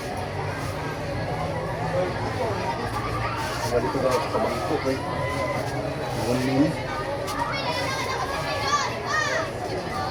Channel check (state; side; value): identical; both; correlation 1.00